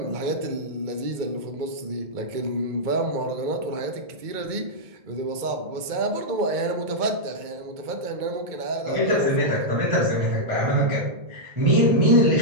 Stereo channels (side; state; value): left; late; 2.2 ms